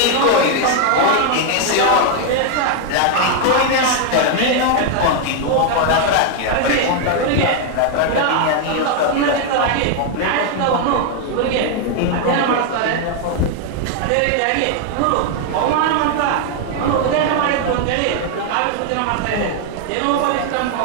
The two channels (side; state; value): both; different; correlation 0.00